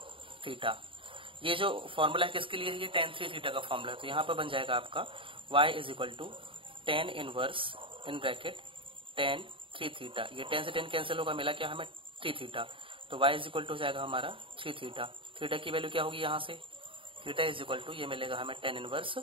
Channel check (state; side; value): late; left; 0.25 ms